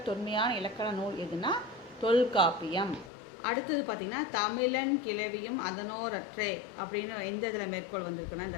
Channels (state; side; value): drops out; right; at 3.1 s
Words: தொன்மையான இலக்கண நூல் எதுனா தொல்காப்பியம். அடுத்தது பார்த்திங்கன்னா தமிழன் கிளவியும் அதனோரற்றே அப்படின்னு எந்த இதில் மேற்கோள் வந்திருக்குன்னா,